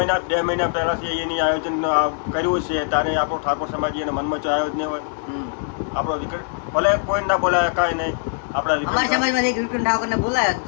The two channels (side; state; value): right; silent; 63 dB below the other